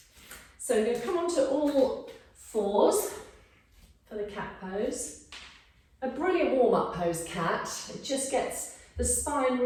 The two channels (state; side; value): identical; both; correlation 1.00